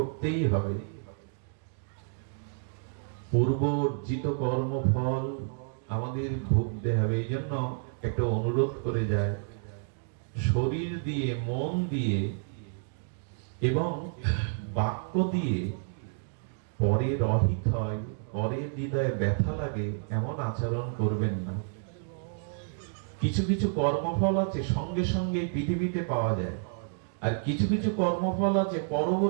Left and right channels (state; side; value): silent; left; digital silence